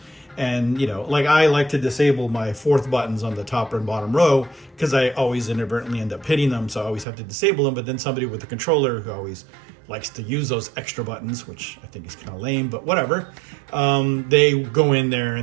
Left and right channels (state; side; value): drops out; left; at 7.1 s